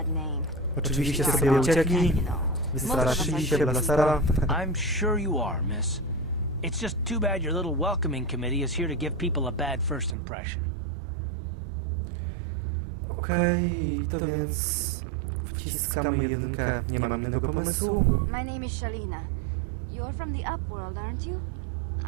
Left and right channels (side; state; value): left; drops out; at 10.2 s